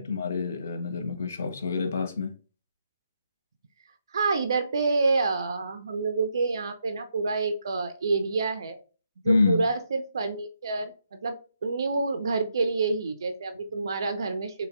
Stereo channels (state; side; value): inverted; both; correlation -0.79